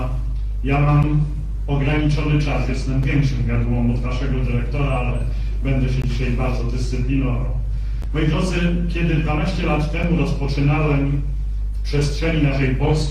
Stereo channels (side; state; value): both; identical; correlation 1.00